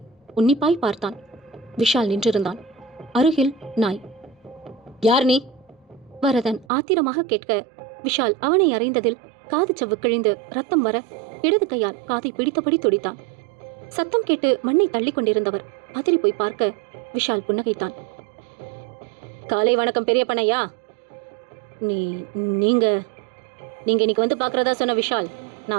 உன்னிப்பாய் பார்த்தான். விஷால் நின்றிருந்தான். அருகில் நாய். யார் நீ? வரதன் ஆத்திரமாக கேட்க விஷால் அவனை அறைந்ததில் காது சவ்வு கிழிந்து ரத்தம் வர இடது கையால் காதை பிடித்தபடி துடித்தான். சத்தம் கேட்டு மண்ணை தள்ளி கொண்டிருந்தவர் பதறி போய் பார்க்க விஷால் புன்னகைத்தான். காலை வணக்கம் பெரிய பண்ணையா. நீங்க இன்னைக்கு வந்து பார்க்கறதா சொன்ன விஷால்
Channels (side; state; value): left; drops out; at 6.7 s